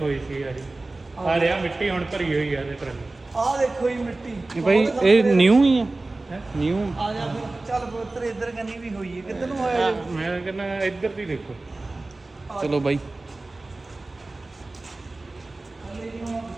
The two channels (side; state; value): left; quieter; 3.1 dB